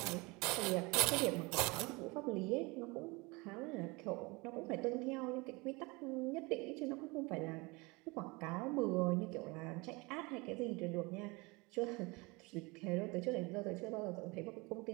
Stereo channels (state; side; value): quieter; left; 25.8 dB